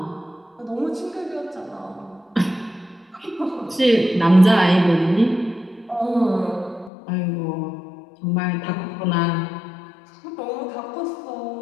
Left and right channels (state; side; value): drops out; right; at 6.9 s